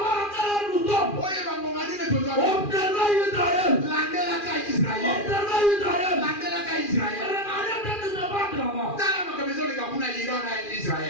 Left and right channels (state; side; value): late; right; 2.4 ms